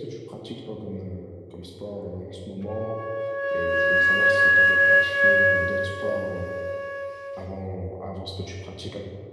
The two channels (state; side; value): identical; both; correlation 1.00